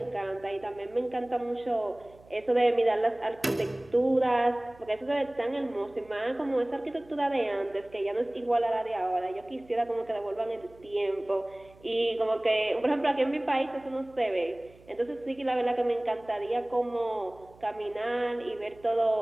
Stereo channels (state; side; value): noise; right; hum, 25 dB below the sound